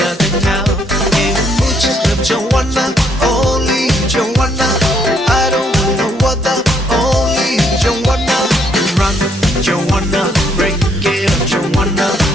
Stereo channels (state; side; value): normal; both; correlation 0.70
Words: tên ngao em muốn chỉ làm trong wanna only trong wanna I don't wanna water only trong wanna run trong wanna break it up trong wanna